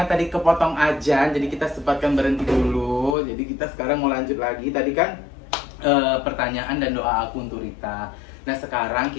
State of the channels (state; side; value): drops out; right; at 3.2 s